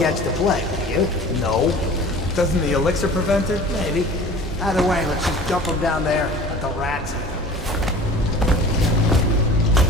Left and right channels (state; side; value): normal; both; correlation 0.42